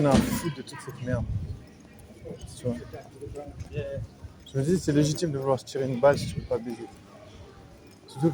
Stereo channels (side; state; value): both; identical; correlation 1.00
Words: ai à foutre de toute cette merde? Tu vois. Je me dis, c'est légitime de vouloir se tirer une balle si tu peux pas baiser. Surtout